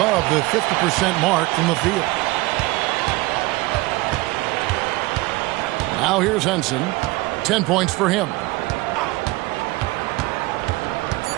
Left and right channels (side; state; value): left; quieter; 21.4 dB